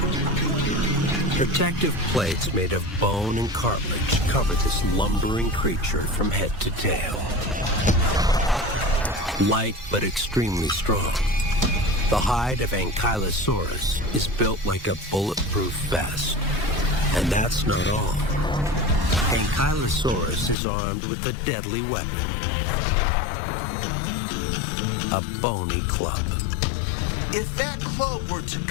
Protective plates made of bone and cartilage cover this lumbering creature from head to tail. Light but extremely strong. The hide of Ankylosaurus is built like a bulletproof vest. And that's not all. Ankylosaurus is armed with a deadly weapon. A bony club. If that club were to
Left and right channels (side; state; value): right; drops out; at 20.6 s